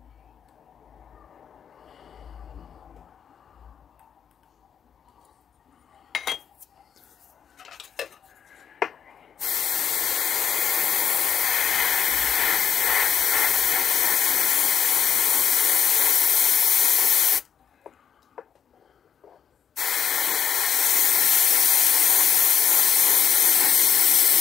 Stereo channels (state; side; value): quieter; right; 7.9 dB